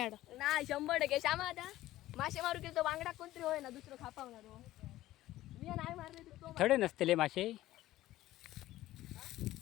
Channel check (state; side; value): quieter; right; 15.3 dB